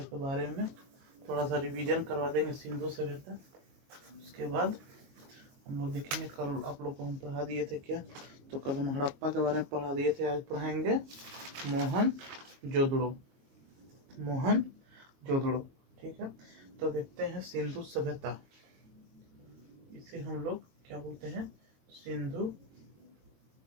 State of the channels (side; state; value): left; late; 22 ms